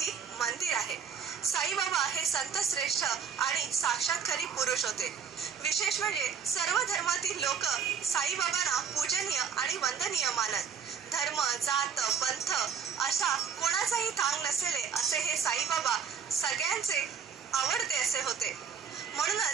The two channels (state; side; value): quieter; left; 7.0 dB